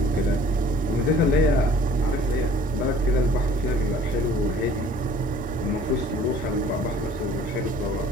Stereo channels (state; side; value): normal; both; correlation 0.52